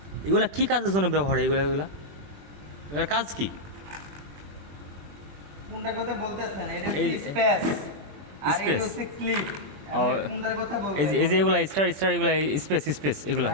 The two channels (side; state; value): left; late; 20 ms